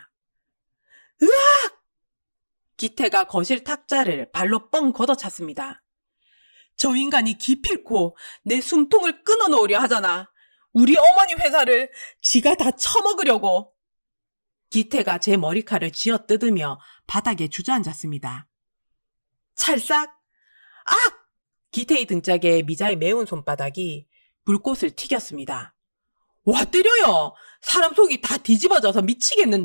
으악! 기태가 거실 탁자를 발로 뻥 걷어찼습니다. 저 인간이 기필코 내 숨통을 끊어놓으려 하잖아. 우리 어머니 회사를 지가 다 처먹으려고. 기태가 제 머리칼을 쥐어뜯으며 바닥에 주저앉았습니다. 찰싹! 악! 기태의 등짝에 미자의 매운 손바닥이 불꽃을 튀겼습니다. 와 때려요! 사람 속이 다 뒤집어져서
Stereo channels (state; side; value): inverted; both; correlation -1.00